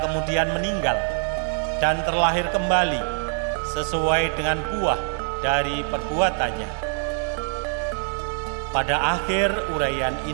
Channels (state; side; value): silent; left; 62 dB below the other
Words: meninggal dan terlahir kembali sesuai dengan buah dari perbuatannya. Pada akhir uraian